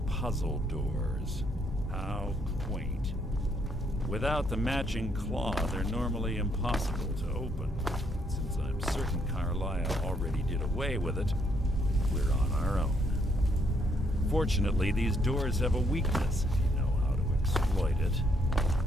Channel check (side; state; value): both; normal; correlation 0.72